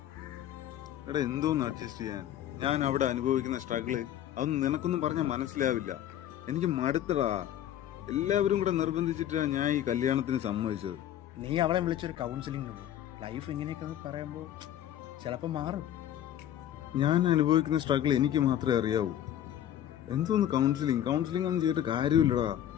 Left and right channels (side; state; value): right; quieter; 11.3 dB